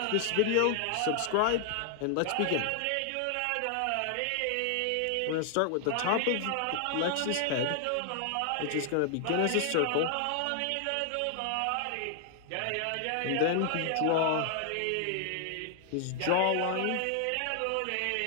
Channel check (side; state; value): both; different; correlation 0.00